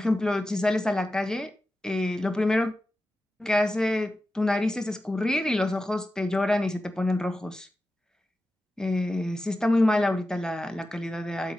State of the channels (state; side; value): normal; both; correlation 0.93